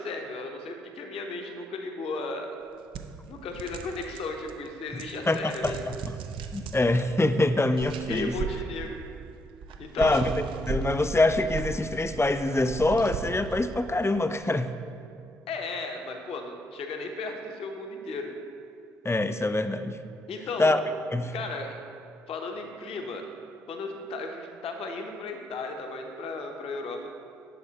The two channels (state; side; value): normal; both; correlation 0.77